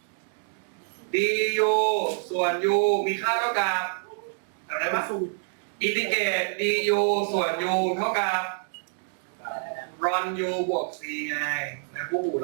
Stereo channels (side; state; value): left; silent; 60 dB below the other